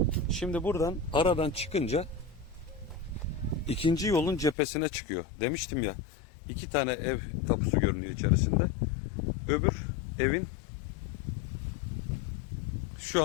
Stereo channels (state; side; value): drops out; right; at 4.5 s